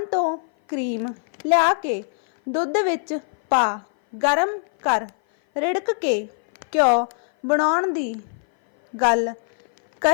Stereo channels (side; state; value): right; silent; 57 dB below the other